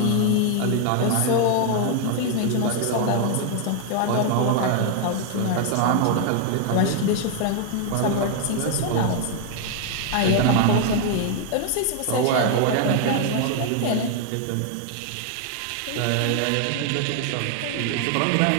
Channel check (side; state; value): both; different; correlation 0.00